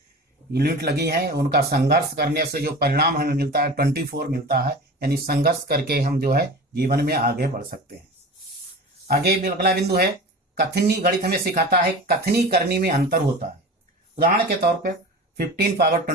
यूनिट लगी है, उनका संघर्ष करने से जो परिणाम हमें मिलता है 24 मिलता है। यानी संघर्ष करके हम जो है जीवन में आगे बढ़ सकते हैं। आगे अगला बिंदु है कथनी। गणित हमें सिखाता है कथनी करने में अंतर होता है। उदाहरण के तौर पर 15 पावर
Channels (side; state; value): both; normal; correlation 0.35